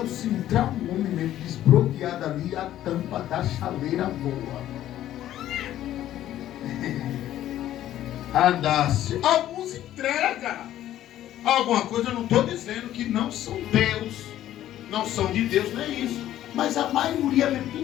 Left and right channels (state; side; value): quieter; right; 12.7 dB